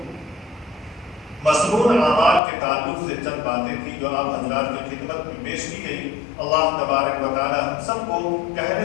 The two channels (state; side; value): drops out; right; at 2.4 s